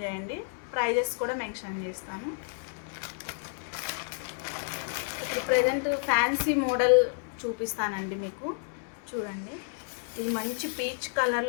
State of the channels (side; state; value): right; silent; 58 dB below the other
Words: చేయండి. ప్రైజెస్ కూడా మెన్షన్ చేస్తాను. ప్రజెంట్ ఫ్యాన్సీ మోడల్ చూపిస్తానండి మీకు. చూడండి, ఇది మంచి పీచ్